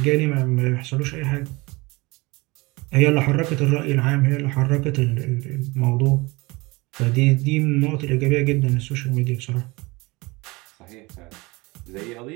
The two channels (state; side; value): quieter; left; 23.7 dB